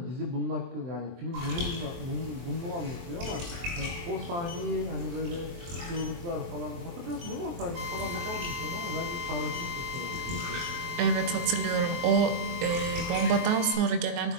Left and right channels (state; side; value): late; left; 23 ms